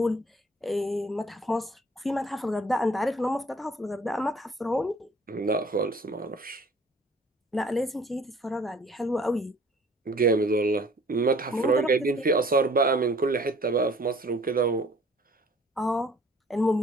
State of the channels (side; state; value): both; normal; correlation 0.54